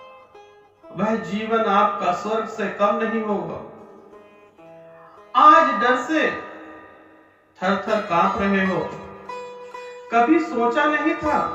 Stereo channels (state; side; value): identical; both; correlation 1.00